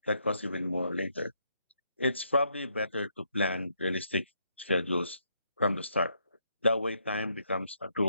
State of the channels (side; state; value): both; inverted; correlation -0.75